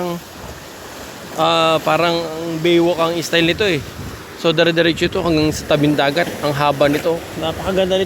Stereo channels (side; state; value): both; identical; correlation 1.00